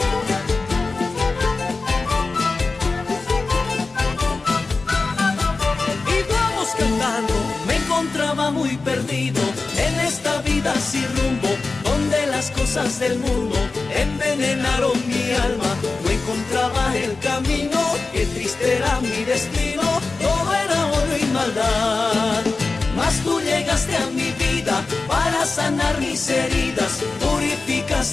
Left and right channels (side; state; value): right; quieter; 3.8 dB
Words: Y vamos cantando. Me encontraba muy perdido en esta vida sin rumbo, donde las cosas del mundo envenenaron mi alma. No encontraba el camino, qué triste era mi destino, todo era odio y maldad. Mas tú llegaste a mi vida para sanar mis heridas,